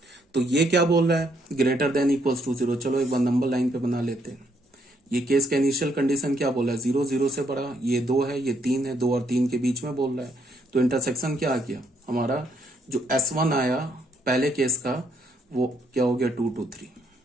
तो ये क्या बोल रहा है, ग्रेटर देन इक्वल्स टू 0। चलो एक बार नंबर लाइन पे बना लेते हैं। ये केस का इनिशियल कंडीशन क्या बोला है, 0 0 से बड़ा, ये 2 है, ये 3 है, 2 और 3 के बीच में बोल रहा है। तो इंटरसेक्शन क्या आ गया हमारा, जो S1 आया पहले केस का, वो क्या हो गया 2 to 3,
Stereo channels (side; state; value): both; normal; correlation 0.72